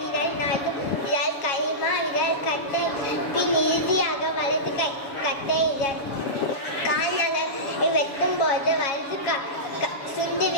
நடு விரல், கைமா விரல், கட்டை, பின் இறுதியாக வலது கை கட்டை விரல். கால் நகத்தை வெட்டும் போது வலது சுண்டு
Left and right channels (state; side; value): late; right; 7.3 ms